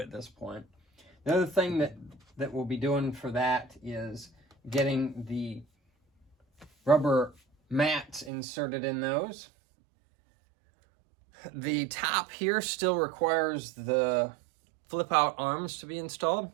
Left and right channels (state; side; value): drops out; left; at 8.3 s